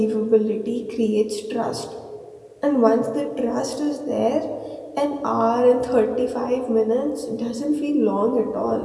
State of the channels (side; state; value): both; identical; correlation 1.00